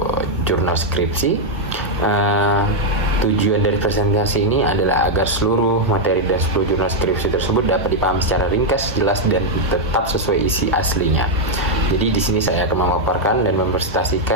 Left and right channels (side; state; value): both; normal; correlation 0.00